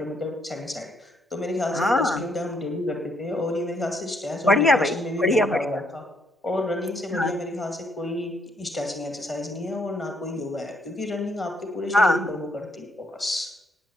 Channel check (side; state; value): both; normal; correlation 0.71